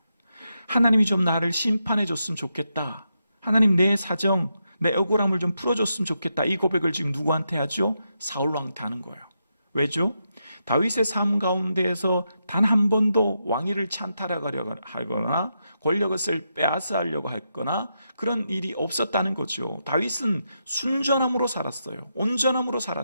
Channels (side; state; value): both; inverted; correlation -0.84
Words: 하나님이 좀 나를 심판해 줬으면 좋겠다. 하나님, 내 사정, 내 억울함을 좀 풀어줬으면 좋겠다. 이 고백을 지금 누구한테 하죠? 사울 왕한테 하는 거예요. 왜죠? 다윗의 삶 가운데에서 단 한 번도 왕위를 찬탈하려고 하거나 권력을 빼앗아 하려고 했거나 그런 일이 없었다는 거죠. 다윗은 순전함으로 살았어요. 온전함으로